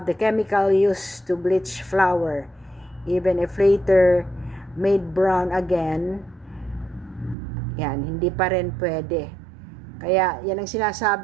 the chemical used to bleach flour, even if later made brown again, yan, hindi pa rin pwede. Kaya yan ang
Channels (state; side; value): drops out; left; at 7.4 s